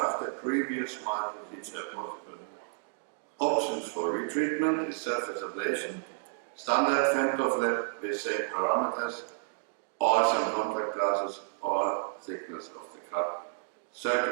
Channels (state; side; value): silent; left; digital silence